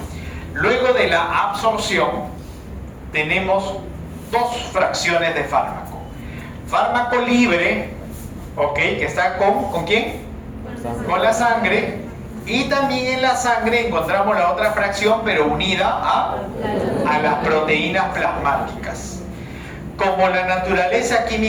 Luego de la absorción, tenemos dos fracciones de fármaco. Fármaco libre, ¿ok? Que está ¿con quién? Con la sangre. Y también en la sangre encontramos la otra fracción, pero unida a las proteínas plasmáticas. Como la naturaleza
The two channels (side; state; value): both; identical; correlation 1.00